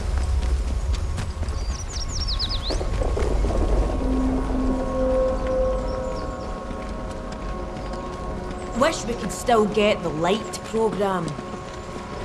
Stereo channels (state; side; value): identical; both; correlation 1.00